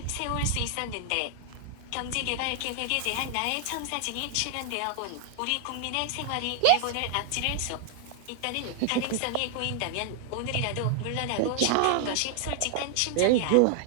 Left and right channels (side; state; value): both; different; correlation 0.00